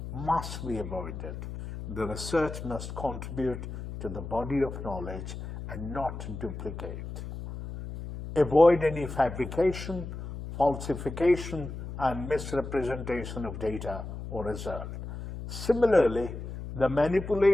must be avoided. The research must contribute to the body of knowledge and not duplicate. Avoid any fabrication, falsification, and misrepresentation of data or result. Similarly, the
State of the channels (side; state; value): left; noise; hum, 8 dB below the sound